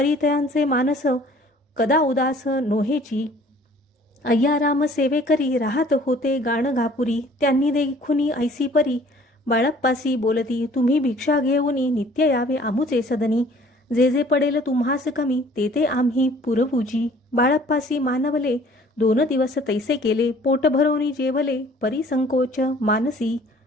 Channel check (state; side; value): normal; both; correlation 0.54